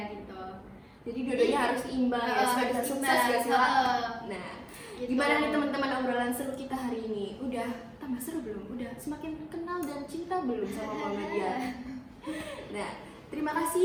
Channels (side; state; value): both; identical; correlation 1.00